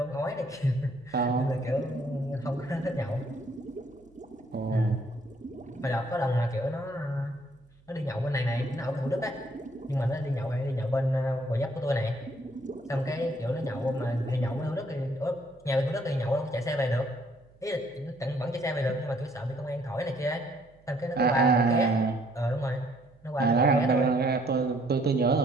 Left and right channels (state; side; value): noise; right; hum, 29 dB below the sound